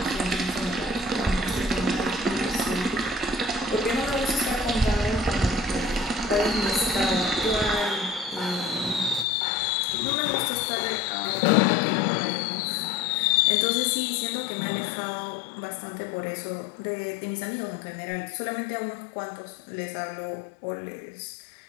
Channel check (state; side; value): drops out; right; at 9.2 s